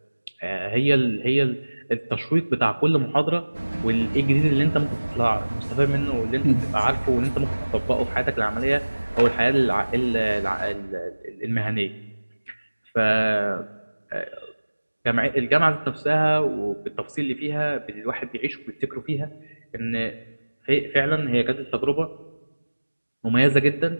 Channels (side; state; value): both; inverted; correlation -1.00